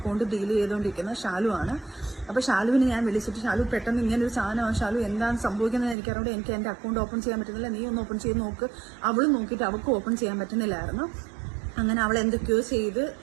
ഡീൽ ചെയ്തുകൊണ്ടിരിക്കുന്ന ഷാലു ആണ്. അപ്പോൾ ഷാലുവിനെ ഞാൻ വിളിച്ചിട്ട്, ഷാലു പെട്ടെന്ന് ഇങ്ങനൊരു സാധനമാണ്, ഷാലു എന്താണ് സംഭവിക്കുന്നത് എനിക്കറിയാം, എനിക്ക് എൻ്റെ അക്കൗണ്ട് ഓപ്പൺ ചെയ്യാൻ പറ്റുന്നില്ല, നീ ഒന്ന് ഓപ്പൺ ചെയ്ത് നോക്ക്. അവളും നോക്കിയിട്ട് അവൾക്ക് ഓപ്പൺ ചെയ്യാൻ പറ്റുന്നില്ലായിരുന്നു. അങ്ങനെ അവൾ എന്തൊക്കെയോ ചെയ്ത്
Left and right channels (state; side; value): drops out; left; at 6.0 s